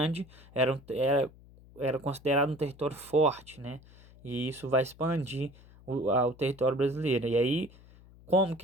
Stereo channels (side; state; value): left; noise; hum, 23 dB below the sound